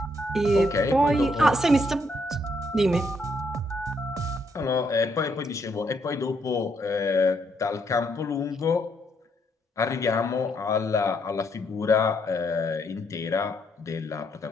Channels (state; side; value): normal; both; correlation 0.74